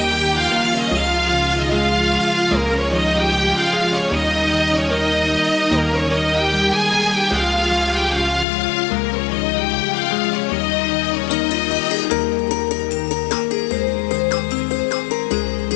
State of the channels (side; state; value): right; drops out; at 8.5 s